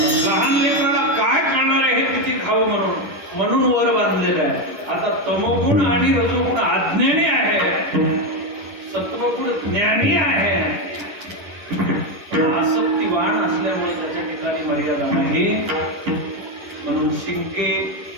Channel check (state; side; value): late; left; 11 ms